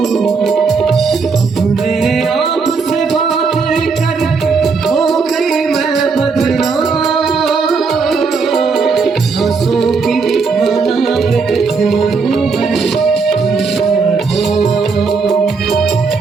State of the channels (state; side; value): quieter; left; 4.8 dB